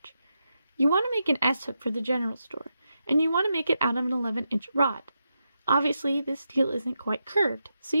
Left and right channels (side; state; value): both; inverted; correlation -0.86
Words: You want to make an S-hook for the general store, and you want to make it out of an 11-inch rod. Obviously, this steel isn't quite curved, so